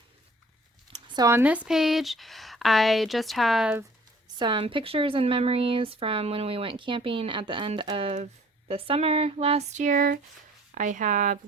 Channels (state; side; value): normal; both; correlation 0.54